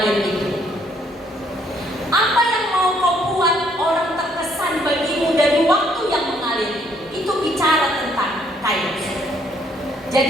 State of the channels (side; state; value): both; normal; correlation 0.67